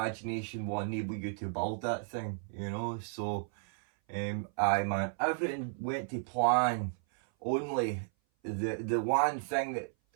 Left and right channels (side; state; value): left; silent; 55 dB below the other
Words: will enable you to build that thing, you know. So, aye man, everything went to plan. Only the one thing